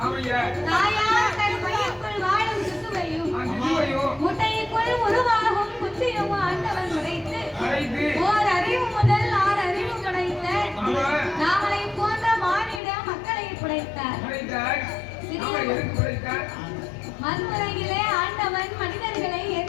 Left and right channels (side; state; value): right; drops out; at 12.8 s